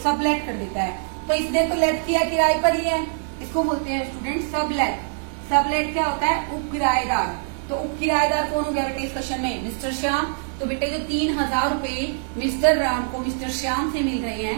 सबलेट कर देता है। तो इसने तो लेट किया, किराए पर लिया, इसको बोलते हैं स्टूडेंट सबलेट। सबलेट क्या होता है, उप किराएदार। तो उप किराएदार कौन हो गया बेटे इस क्वेश्चन में, मिस्टर श्याम। तो बेटे जो 3,000 रुपए मिस्टर राम को मिस्टर श्याम से मिल रहे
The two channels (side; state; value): left; silent; digital silence